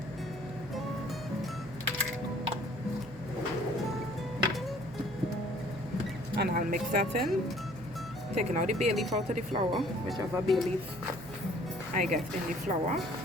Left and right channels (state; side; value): noise; right; hum, 18 dB below the sound